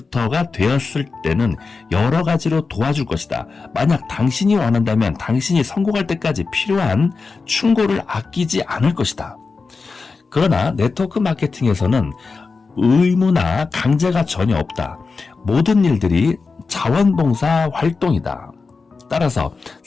되었을 때는 여러 가지로 도와줄 것이다. 만약 당신이 원한다면 당신이 성공할 때까지 필요한 충고를 아끼지 않을 것이다. 그러나 네트워크 마케팅에서는 의무나 강제가 전혀 없다. 모든 일들이 자원봉사 활동이다. 따라서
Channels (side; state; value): right; quieter; 4.4 dB